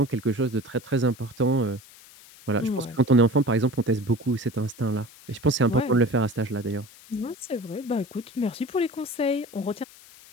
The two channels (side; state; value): left; noise; hiss, 22 dB below the sound